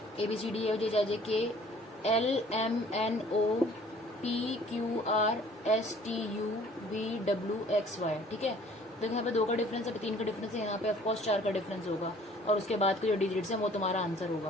ABCDEFGHIJK LMNOPQRSTUVWXY, ठीक है। देखो यहाँ पे 2 का डिफरेंस है, 3 का डिफरेंस है, यहाँ पे ऑफकोर्स 4 का डिफरेंस होगा, और उसके बाद के जो डिजिट्स हैं वो तुम्हारा आंसर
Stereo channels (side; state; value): both; normal; correlation 0.54